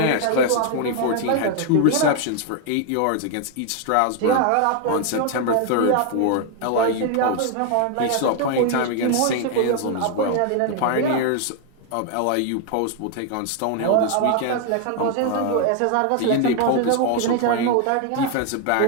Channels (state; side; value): different; both; correlation 0.00